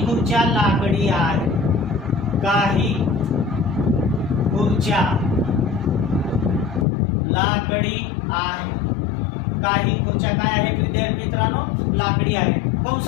खुर्च्या लाकडी आहेत, काही खुर्च्या लाकडी आहे। काही खुर्च्या काय आहेत विद्यार्थी मित्रांनो, लाकडी आहेत।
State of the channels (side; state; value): right; drops out; at 6.9 s